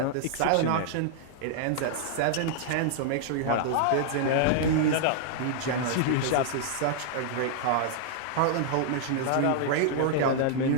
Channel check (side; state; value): both; different; correlation -0.01